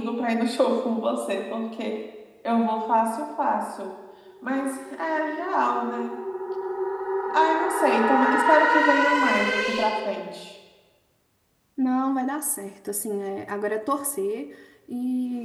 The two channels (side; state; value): both; identical; correlation 1.00